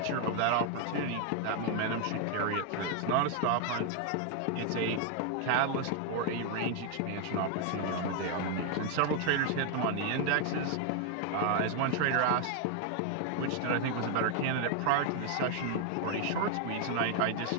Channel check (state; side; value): different; both; correlation 0.00